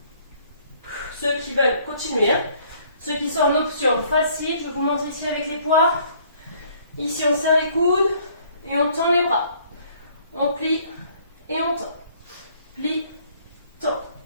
Ceux qui veulent continuer, hein? Ceux qui sont en option facile, je vous montre ici avec les poids. Ici, on serre les coudes et on tend les bras. On plie et on tend. Plie, tend.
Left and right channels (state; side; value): inverted; both; correlation -0.61